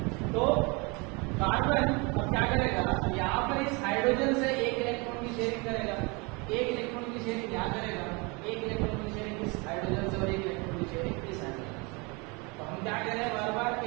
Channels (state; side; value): quieter; left; 28.8 dB